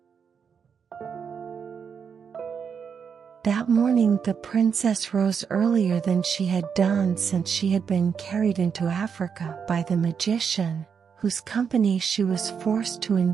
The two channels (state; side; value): quieter; left; 6.7 dB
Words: That morning the princess rose earlier than she had done since she had been carried into Africa by the magician, whose company she was forced to